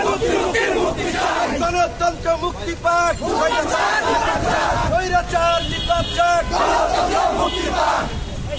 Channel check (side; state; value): both; identical; correlation 1.00